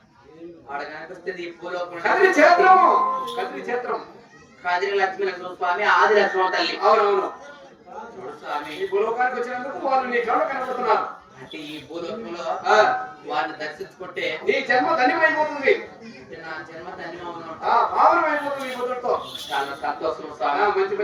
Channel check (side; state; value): both; identical; correlation 1.00